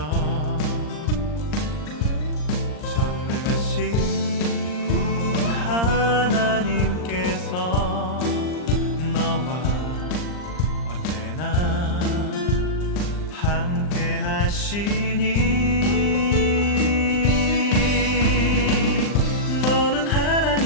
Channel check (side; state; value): right; late; 39 ms